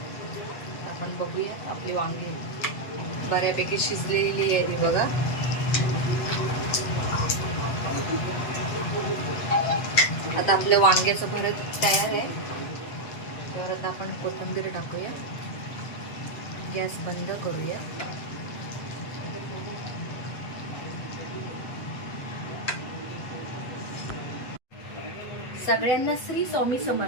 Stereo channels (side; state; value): right; late; 8.1 ms